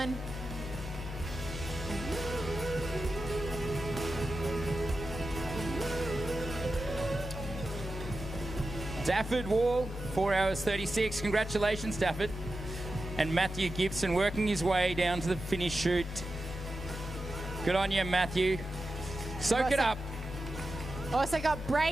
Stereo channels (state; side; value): normal; both; correlation 0.91